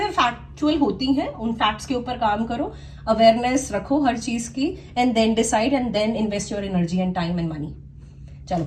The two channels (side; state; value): both; identical; correlation 1.00